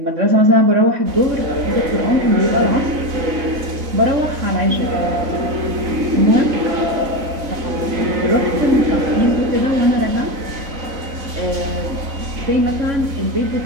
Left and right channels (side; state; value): left; late; 3.6 ms